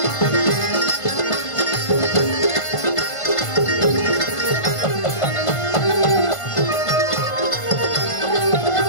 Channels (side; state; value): right; late; 1.5 ms